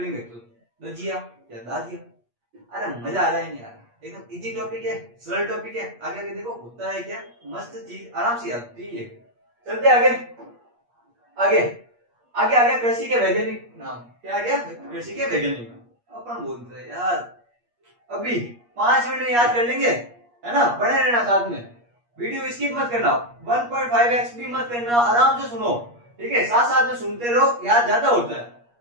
तो दजिया या दाजिया। अरे मजा आ रहा है नहीं आ रहा? एकदम इजी टॉपिक है, सरल टॉपिक है। आगे आगे देखो होता है क्या, मस्त चीज आराम से आती है। चलते आगे आगे आगे आगे कृषि के वैज्ञानिक नाम। क्या आ गया? कृषि के वैज्ञानिक नाम। अपन बोलते हैं यार अभी 5 मिनट में याद कर लेंगे, है ना? बने रहना साथ में, वीडियो स्किप मत करना, 1.5x भी मत करना, आराम से सुनो, ठीक है। साथ साथ में सुनते रहो, याद ज्यादा होता है।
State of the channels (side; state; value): left; late; 8.4 ms